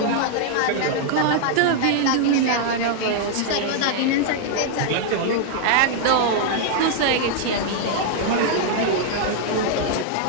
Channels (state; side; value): different; both; correlation -0.01